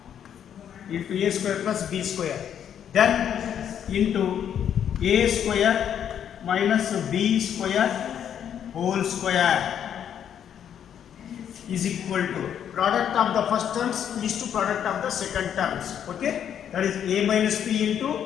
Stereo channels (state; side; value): quieter; right; 9.1 dB